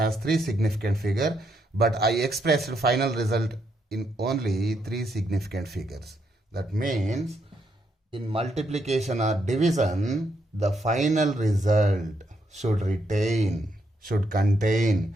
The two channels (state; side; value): normal; both; correlation 0.77